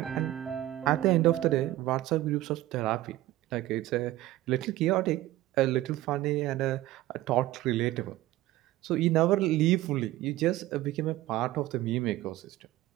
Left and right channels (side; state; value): left; quieter; 15.8 dB